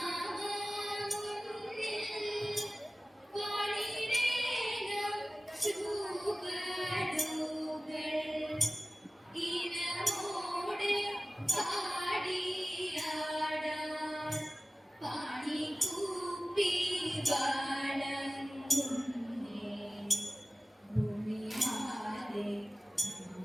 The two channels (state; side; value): normal; both; correlation 0.97